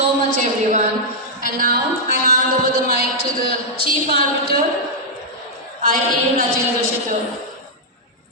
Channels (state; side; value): normal; both; correlation -0.06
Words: much, everyone. And now I hand over the mic to the Chief Arbiter, I.A. Rajendra Shidor.